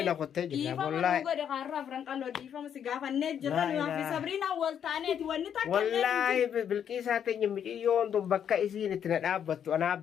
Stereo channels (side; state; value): right; quieter; 8.7 dB